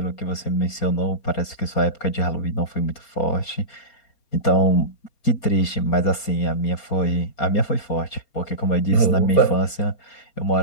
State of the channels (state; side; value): late; right; 4.3 ms